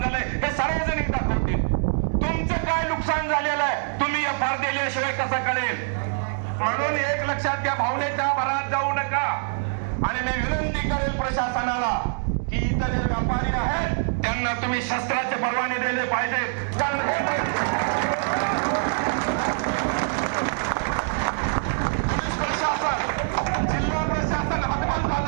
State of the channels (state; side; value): silent; left; digital silence